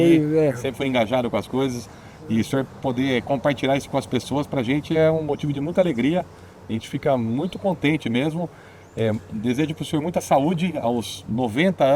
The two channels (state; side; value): identical; both; correlation 1.00